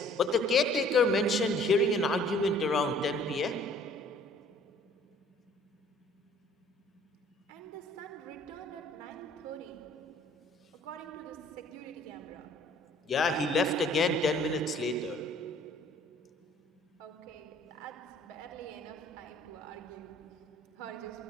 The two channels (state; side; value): normal; both; correlation 0.56